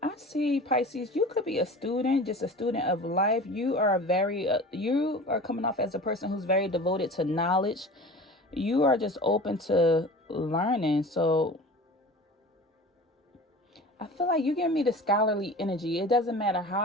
I see, Pisces, you could be a student, just a student of life. You are you are coming off as a person who's very devoted to knowledge. You are just open to learning. So I feel like you give me the scholarly energy. It doesn't matter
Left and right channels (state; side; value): normal; both; correlation 0.38